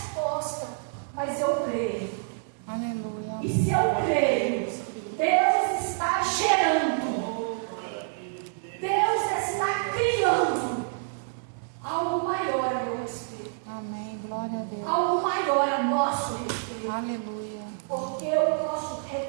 mas eu creio. Aleluia. E se eu creio, Deus está gerando, Deus está criando algo maior a meu respeito, Amém, glória a Deus. algo maior a nosso respeito, Aleluia. porque o nosso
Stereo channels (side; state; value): left; silent; digital silence